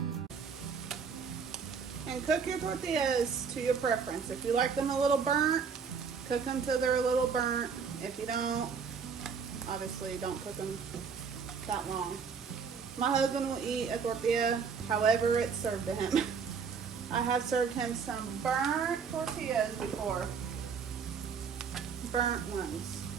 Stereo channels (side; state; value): left; quieter; 6.0 dB